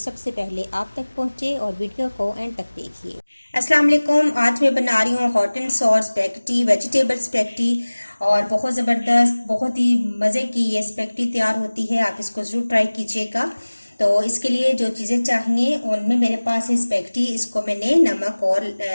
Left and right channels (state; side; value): inverted; both; correlation -1.00